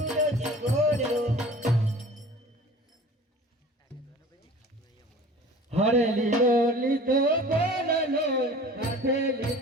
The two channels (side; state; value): both; normal; correlation 0.43